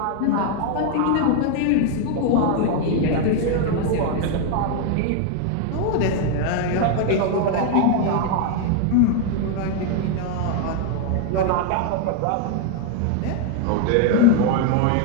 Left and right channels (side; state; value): both; different; correlation 0.00